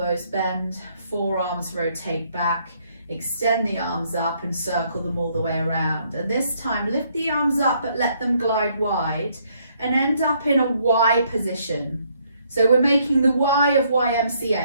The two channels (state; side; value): inverted; both; correlation -0.69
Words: bend, forearms rotate back, extend the arms up and circle them all the way around. And this time, lift the arms up but let them glide wide and end up in a Y position. So we're making the Y of